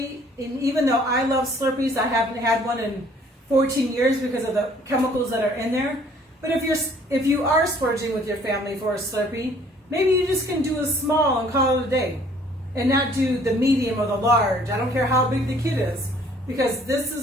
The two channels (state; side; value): normal; both; correlation 0.58